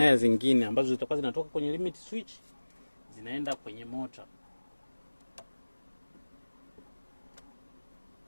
zingine ambazo zitakuwa zinatoka kwenye limit switch zinaenda kwenye mota.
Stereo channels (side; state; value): both; inverted; correlation -1.00